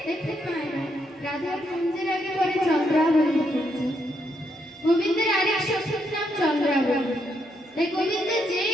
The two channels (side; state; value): both; normal; correlation 0.78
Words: দেখতে পায় না রাধার কুঞ্জের আগে পরে চন্দ্রাবলী কুঞ্জ। গোবিন্দের আরেক সখীর নাম চন্দ্রাবলী। তাই গোবিন্দ যেই